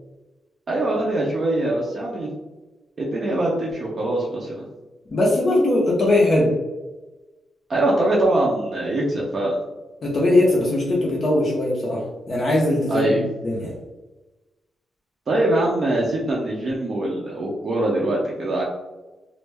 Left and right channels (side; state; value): both; normal; correlation 0.81